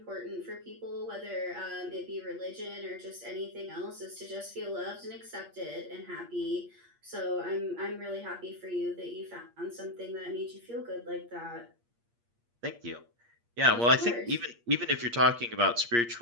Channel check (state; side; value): late; left; 8.5 ms